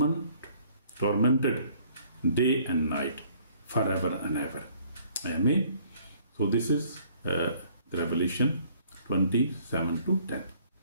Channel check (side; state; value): both; inverted; correlation -0.60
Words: day and night, forever and ever. Amen. So this is the Revelation 27-10.